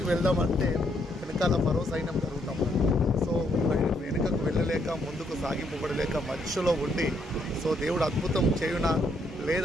వెళ్దామంటే వెనకాల మరో సైన్యం జరుగుతాం. సో వెనుకకు వెళ్ళలేక ముందుకు సాగిపోబడలేక మధ్యలో ఉండి సో దేవుడు అద్భుతం చేయునా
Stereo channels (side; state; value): both; normal; correlation 0.73